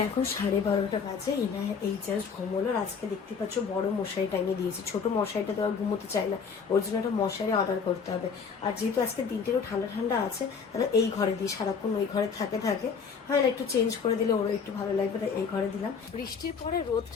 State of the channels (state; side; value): quieter; right; 5.9 dB